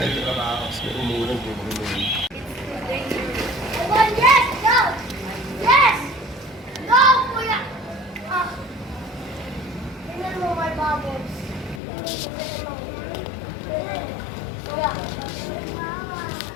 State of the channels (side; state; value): right; drops out; at 11.8 s